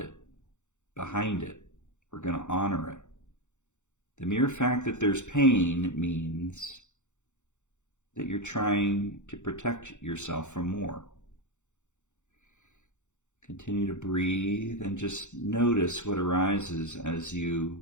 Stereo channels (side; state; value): right; late; 0.84 ms